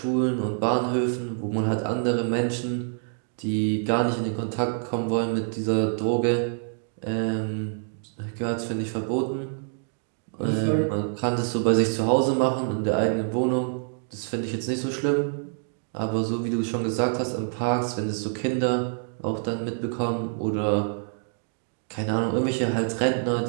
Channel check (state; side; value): silent; left; digital silence